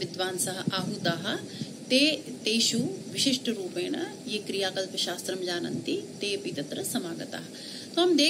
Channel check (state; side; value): identical; both; correlation 1.00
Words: आहूताः, तेषु विशिष्टरूपेण ये क्रियाकल्पशास्त्रं जानन्ति, ते अपि तत्र समागताः। तो हम